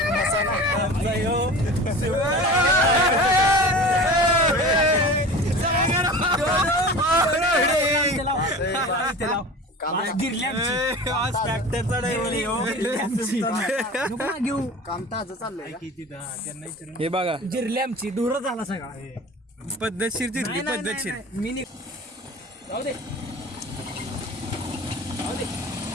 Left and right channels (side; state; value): both; normal; correlation 0.36